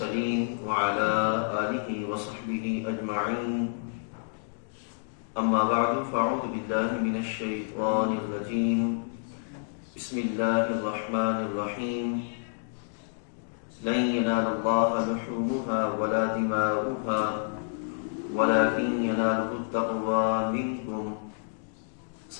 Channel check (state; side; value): silent; right; digital silence